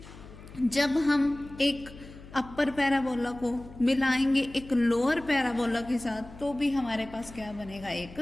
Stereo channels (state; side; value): noise; left; hum, 18 dB below the sound